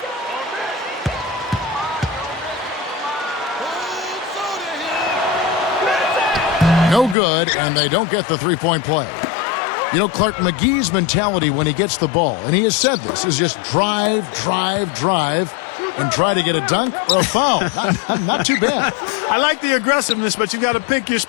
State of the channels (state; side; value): drops out; right; at 7.2 s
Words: No good, and they don't get the three-point play. You know, Clark, McGee's mentality when he gets the ball, and he has said this, is just drive, drive, drive, and try to get a dunk or a foul. Not too bad. I like the aggressiveness, but you've got to pick your